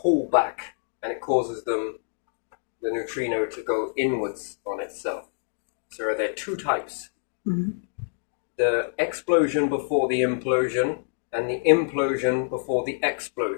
back, and it causes the neutrino to go inwards on itself. So are there two types? The explosion before the implosion, and the implosion before the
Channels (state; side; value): silent; right; digital silence